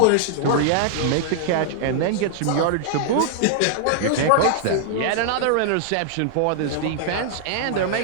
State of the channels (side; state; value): both; different; correlation -0.01